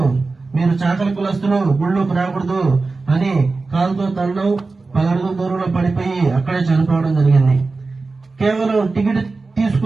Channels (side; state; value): left; quieter; 3.8 dB